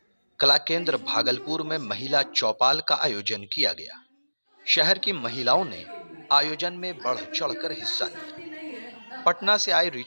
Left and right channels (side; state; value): both; inverted; correlation -1.00